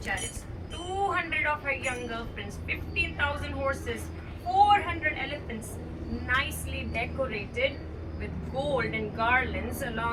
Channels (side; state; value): both; identical; correlation 1.00